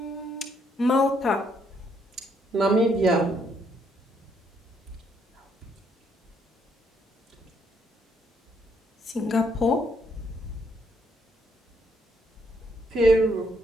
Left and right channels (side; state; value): both; normal; correlation 0.72